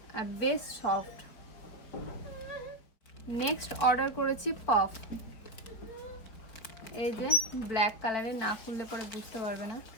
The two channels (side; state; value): right; late; 4.6 ms